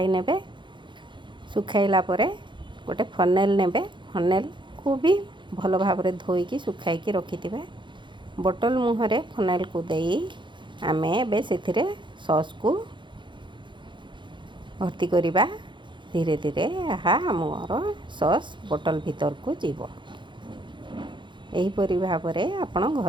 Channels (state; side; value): late; left; 0.23 ms